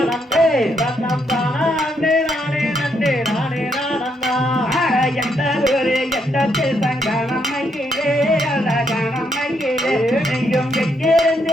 தன்னம் தானா அண்ணே நானே நன்னே நானே நானண்ணா எந்த ஒரு எந்த சங்கானம் மயிலே அழகான மயிலே நீயும்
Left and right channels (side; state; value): both; normal; correlation 0.76